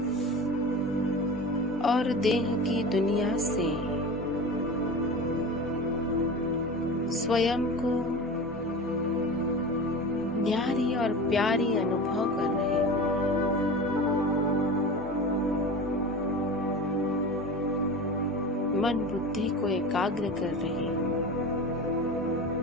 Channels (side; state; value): both; normal; correlation 0.31